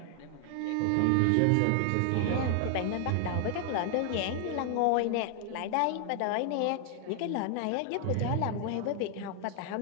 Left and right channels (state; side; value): different; both; correlation 0.00